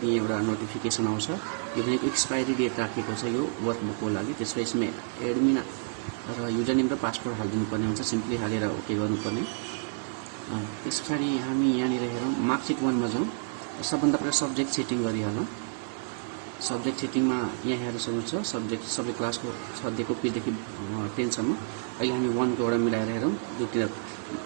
एउटा नोटिफिकेसन आउँछ यो भनेको एक्सपायरी डेट राखेको छ यो वर्कबुकको लागि। त्यसपछि यसमा एडमिन र युजर नेम र पासवर्ड हालिदिनु पर्ने हुन्छ। सिम्पली हालेर ओके गर्नुपर्ने। त्यसपछि हामी यहाँनिर हेरौँ मार्कसिट 1 मा जाउँ। सबभन्दा पहिले सब्जेक्ट सेटिङ गरिहालौँ। सब्जेक्ट सेटिङमा यहाँ हेर्न सक्नुहुन्छ सब्जेक्ट सबै क्लासको सधैँको पेजदेखि 10 सम्म। अहिले हामी 1 को एउटा मिलाएर हेरौँ। दुईवटा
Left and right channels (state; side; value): silent; left; 58 dB below the other